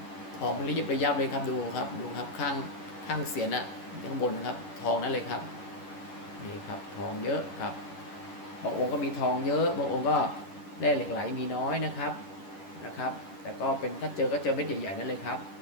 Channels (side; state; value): right; late; 11 ms